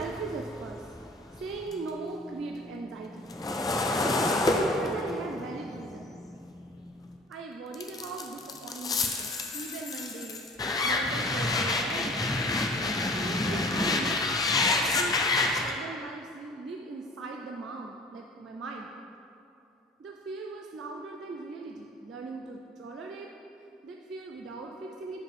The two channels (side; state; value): both; normal; correlation 0.45